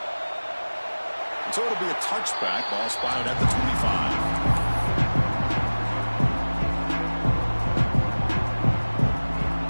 So it'll be a touchback. Ball spotted at the 25.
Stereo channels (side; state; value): both; inverted; correlation -1.00